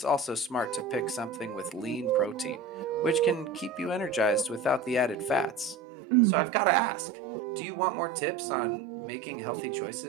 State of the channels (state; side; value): drops out; left; at 5.8 s